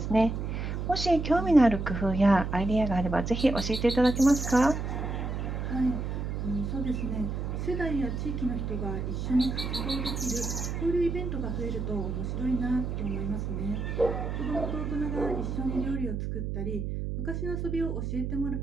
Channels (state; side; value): noise; right; hum, 3 dB below the sound